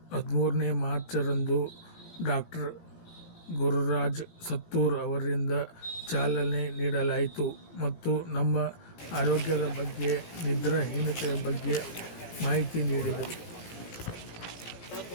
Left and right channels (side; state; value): right; late; 17 ms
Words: 13ನೇ ಮಾರ್ಚರಂದು ಡಾಕ್ಟರ್ ಗುರುರಾಜ್ ಸತ್ತೂರ್ ಅವರಿಂದ ಚಾಲನೆ ನೀಡಲಾಯಿತು ಮತ್ತು ನಮ್ಮ ಆರೋಗ್ಯದ ಬಗ್ಗೆ, ನಿದ್ರಾಹೀನತೆಯ ಬಗ್ಗೆ ಮಾಹಿತಿ ನೀಡಿದರು.